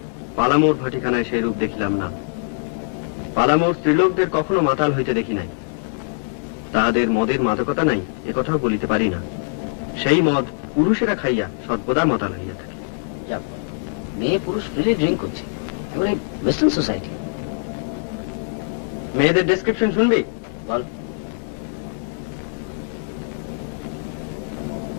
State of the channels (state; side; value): silent; right; digital silence